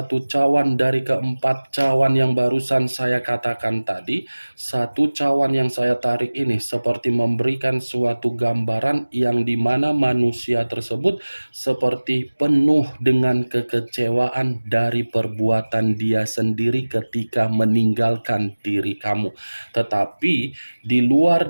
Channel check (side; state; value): both; inverted; correlation -1.00